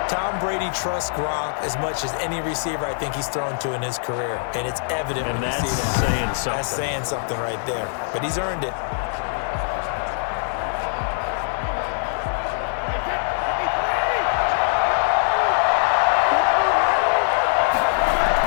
Tom Brady trusts Gronk as much as any receiver I think he's thrown to in his career. And it's evident when you see that. Saying something. That's saying something right there. But he's earned it.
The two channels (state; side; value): silent; right; 57 dB below the other